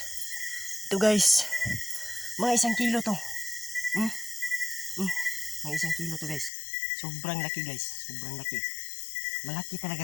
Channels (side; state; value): right; drops out; at 6.5 s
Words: Ito guys. Mga 1 kilo to. Mga 1 kilo to guys. Sobrang laki guys. Sobrang laki. Malaki